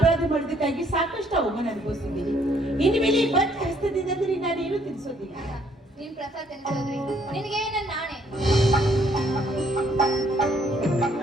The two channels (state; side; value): normal; both; correlation 0.66